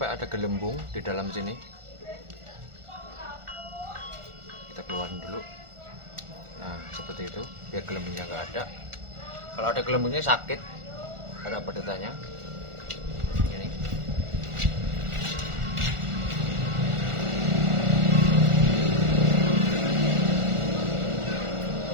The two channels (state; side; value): late; left; 1.4 ms